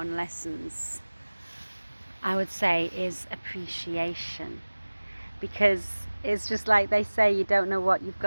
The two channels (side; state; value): both; inverted; correlation -1.00